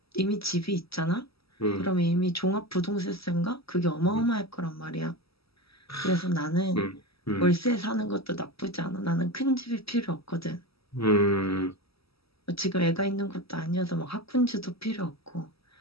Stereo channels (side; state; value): right; late; 0.76 ms